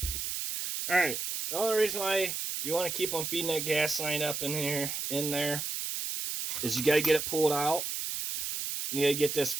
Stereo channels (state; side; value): noise; right; hiss, 3 dB below the sound